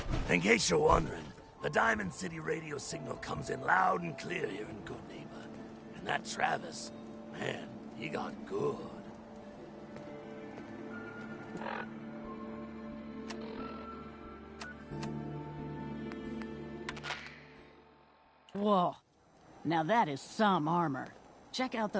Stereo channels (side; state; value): both; identical; correlation 1.00